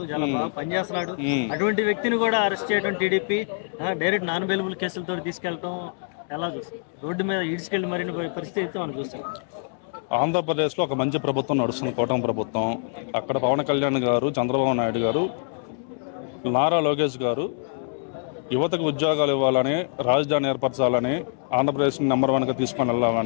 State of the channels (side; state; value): right; silent; digital silence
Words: చాలా బాగా పనిచేస్తున్నాడు. అటువంటి వ్యక్తిని కూడా అరెస్ట్ చేయడం టీడీపీ డైరెక్ట్ నాన్ అవైలబుల్ కేసులతో తీసుకెళ్తాం ఎలా చూస్తాం? రోడ్డు మీద ఈడ్చుకెళ్ళి మరిన్ని పరిస్థితి మనం చూస్తాం. ఆంధ్రప్రదేశ్లో ఒక మంచి ప్రభుత్వం నడుస్తుంది, కూటమి ప్రభుత్వం. అక్కడ పవన్ కళ్యాణ్ గారు, చంద్రబాబు నాయుడు గారు, నారా లోకేష్ గారు యువతకు ఉద్యోగాలు ఇవ్వాలని, రాజధాని ఏర్పరచాలని, ఆంధ్రప్రదేశ్ని నెంబర్ 1గా తీసుకొని